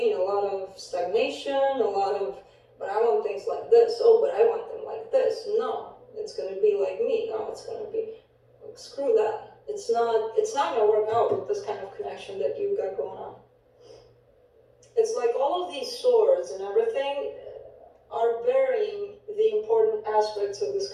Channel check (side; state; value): both; identical; correlation 1.00